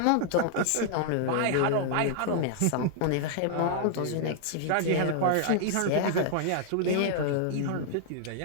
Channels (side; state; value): both; different; correlation -0.01